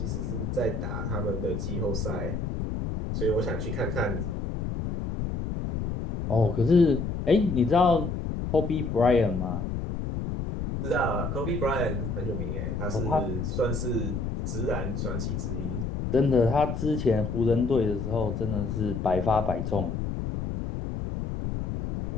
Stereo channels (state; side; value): noise; left; rumble, 3 dB below the sound